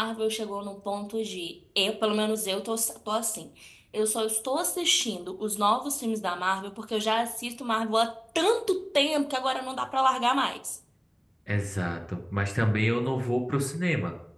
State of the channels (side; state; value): both; identical; correlation 1.00